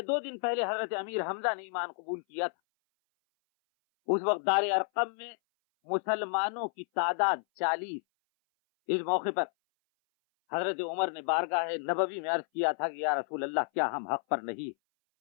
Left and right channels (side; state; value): right; silent; 57 dB below the other